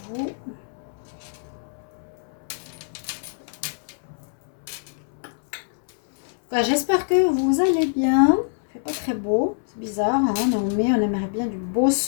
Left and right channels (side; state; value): right; silent; 62 dB below the other